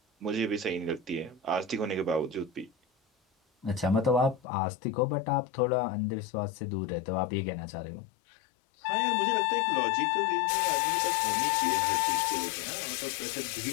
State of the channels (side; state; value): right; drops out; at 4.4 s